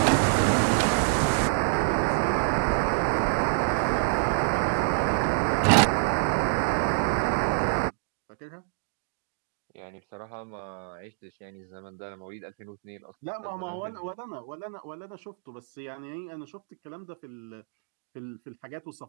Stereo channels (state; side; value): silent; left; digital silence